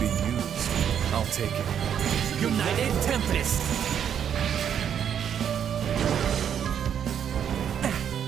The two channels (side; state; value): left; quieter; 8.7 dB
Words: used, I'll take it. United Tempest!